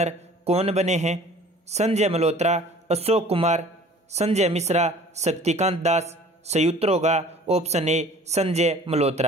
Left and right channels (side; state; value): both; normal; correlation 0.48